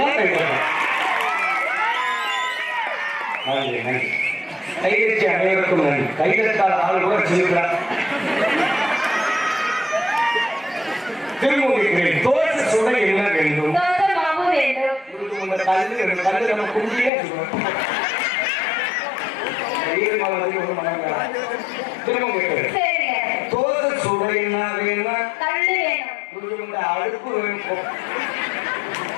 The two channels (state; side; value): drops out; right; at 17.1 s